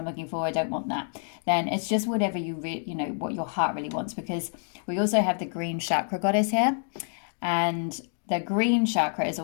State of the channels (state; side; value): silent; right; 60 dB below the other